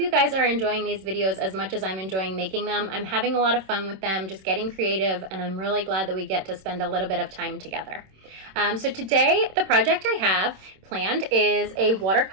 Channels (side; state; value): left; late; 26 ms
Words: guys are enjoying these videos as much as I'm enjoying making them. I'm having a lot of fun with them, just getting creative, and I'm really glad that we get to spend a little bit of time together. So today, the project I have planned is a